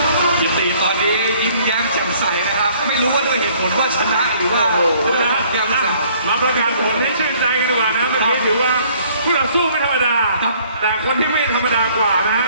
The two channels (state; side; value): inverted; both; correlation -0.59